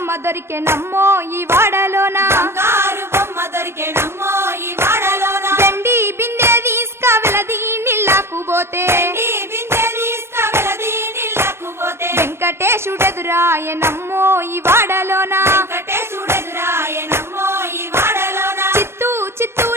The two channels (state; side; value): late; left; 0.12 ms